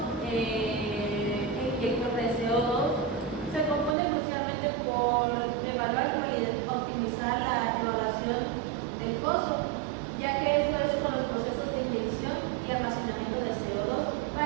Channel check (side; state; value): left; drops out; at 4.0 s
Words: inyector de CO2 se compone crucialmente por evaluar y optimizar la evaluación del pozo, ya que esto es con los procesos de inyección y almacenamiento de CO2.